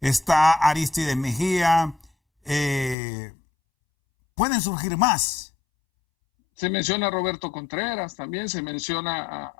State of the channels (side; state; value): right; drops out; at 3.0 s